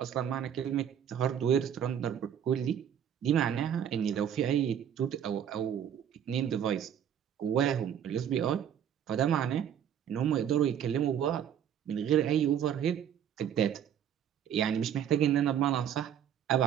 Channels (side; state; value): left; quieter; 9.3 dB